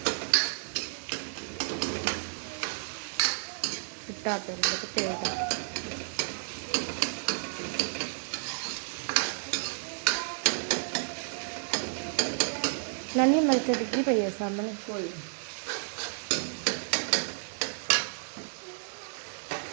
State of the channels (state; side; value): silent; left; digital silence